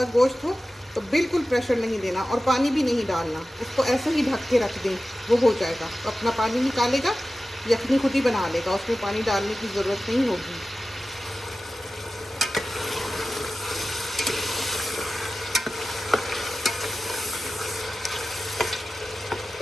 गोश्त हो तो बिल्कुल प्रेशर नहीं देना और पानी भी नहीं डालना, उसको ऐसे ही ढक के रख दें, वो हो जाएगा। तो अपना पानी निकालेगा, यखनी खुद ही बना लेगा, उसमें पानी डालने की ज़रूरत नहीं होगी।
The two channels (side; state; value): both; normal; correlation 0.95